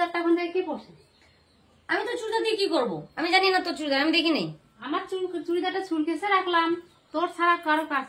এখন থেকে কে পড়ছে? আমি তো চুড়িদার দিয়ে কি করবো? আমি জানি না তোর চুড়িদার, আমি দেখি নেই। আমার চুড়িদারটা চুলকেছে রাখলাম, তোর ছাড়া কারো কাজ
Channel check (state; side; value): identical; both; correlation 1.00